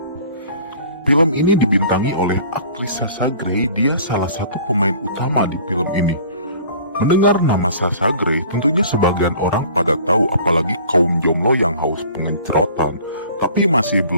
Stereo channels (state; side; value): inverted; both; correlation -0.49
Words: Film ini dibintangi oleh aktris Sasha Grey, dia salah satu pemain utama di film ini. Mendengar nama Sasha Grey, tentunya sebagian orang pada tahu, apalagi kaum jomblo yang haus pengencerotan. Tapi masih